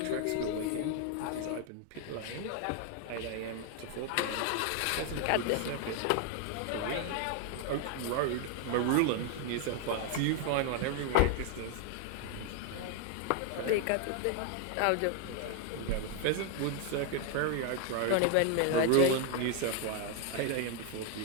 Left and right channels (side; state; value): both; different; correlation 0.01